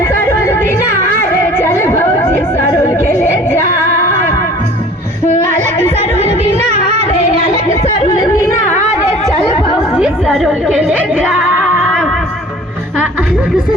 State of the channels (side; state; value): both; normal; correlation 0.48